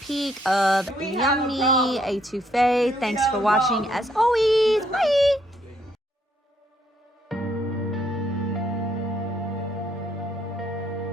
of yummy étouffée. Thanks for watching as always. Bye!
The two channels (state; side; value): normal; both; correlation 0.71